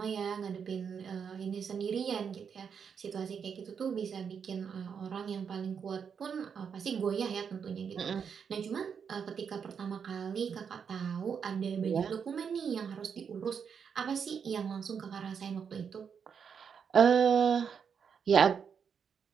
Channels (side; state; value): left; quieter; 6.9 dB